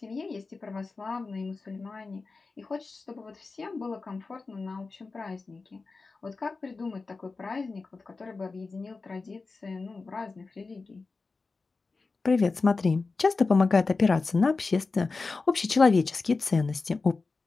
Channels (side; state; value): right; quieter; 4.0 dB